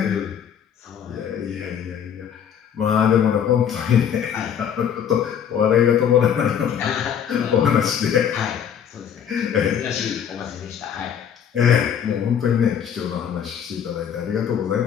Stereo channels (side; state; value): right; quieter; 8.5 dB